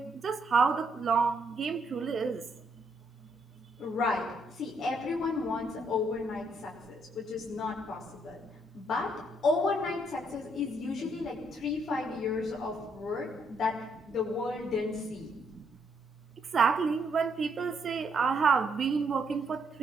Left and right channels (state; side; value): normal; both; correlation 0.73